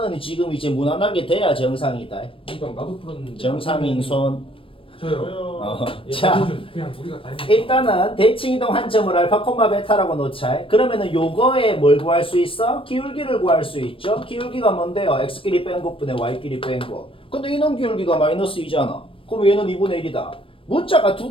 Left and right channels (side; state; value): right; late; 0.26 ms